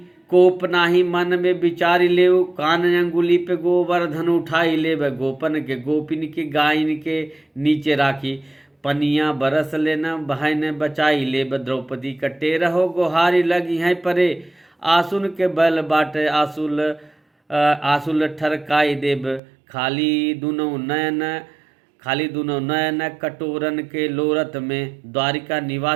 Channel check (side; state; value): left; drops out; at 19.4 s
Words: कोप नाही मन में विचारी ले, कान अंगुली पे गोवर्धन उठाई ले। गोपन के गोपिन के गायन के नीचे राखी, पनिया बरस लेना बहन बचाई ले। द्रौपदी कटे रहो गोहारी लगी हैं परे, आसुन के बल बाटे आसुल ठरकाई देव। खाली दुनो नयन कटोरन के लोरत में, द्वारिका